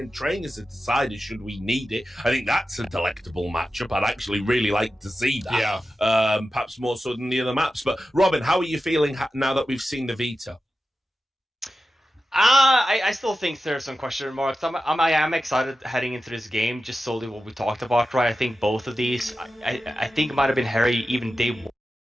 trainers have decided, should we need it? I think that's a delectable matchup. I'd actually really like to see that. Yeah. Perhaps more so than the other maps. But Robin, how are you feeling now that we've seen the Vita? I still think there's some question marks. I am excited heading into this game, just solely what we talked about, right? I think both of these, I think it might have been Harry even day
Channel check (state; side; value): normal; both; correlation 0.93